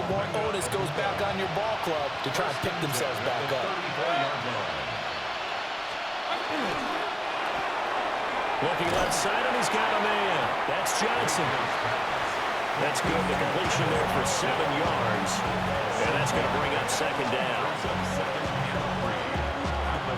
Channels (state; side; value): identical; both; correlation 1.00